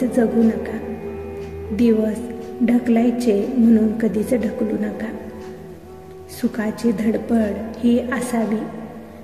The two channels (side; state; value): both; identical; correlation 1.00